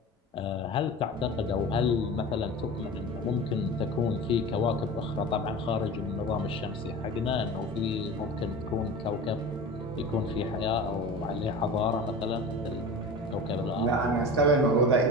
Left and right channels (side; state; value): both; normal; correlation 0.33